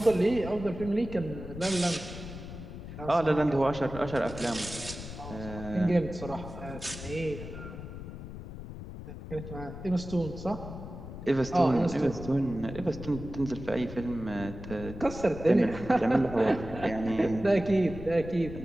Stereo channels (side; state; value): left; noise; rumble, 11 dB below the sound